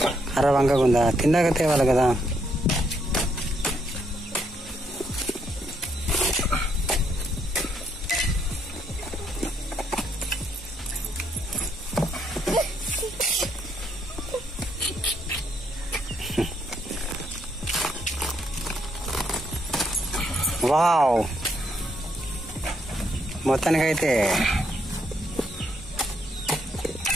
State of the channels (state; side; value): normal; both; correlation 0.74